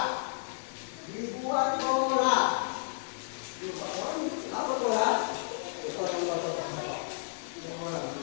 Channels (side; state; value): right; silent; digital silence